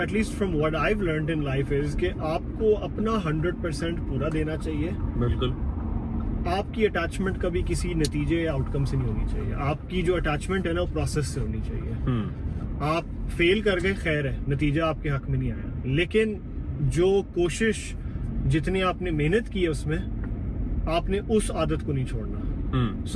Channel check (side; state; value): both; identical; correlation 1.00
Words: at least from what I've learned in life, is कि आपको अपना 100% पूरा देना चाहिए. बिल्कुल. आपकी अटैचमेंट कभी किसी नतीजे या आउटकम से नहीं होनी चाहिए. आपकी जो अटैचमेंट है ना, वो प्रोसेस से होनी चाहिए. आप फेल कर गए, खैर है, नतीजा आपके हक में नहीं आया, लेकिन जो कोशिश, जितनी आपने मेहनत की है, उसमें आपने उस आदत को नहीं छोड़ना.